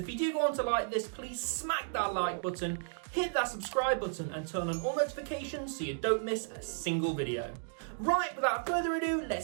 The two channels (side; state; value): left; silent; digital silence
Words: if you do want to like this, please smack that like button, hit that subscribe button and turn on all notifications so you don't miss a single video. Right, without further ado,